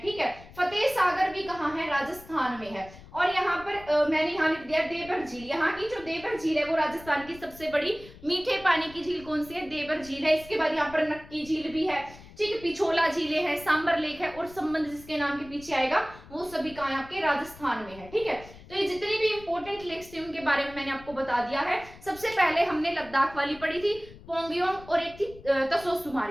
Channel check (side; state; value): left; noise; rumble, 19 dB below the sound